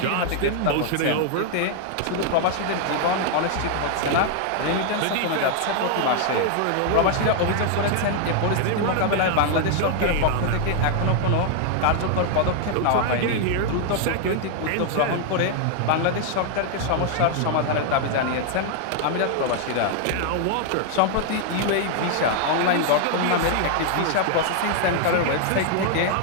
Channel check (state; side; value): different; both; correlation 0.00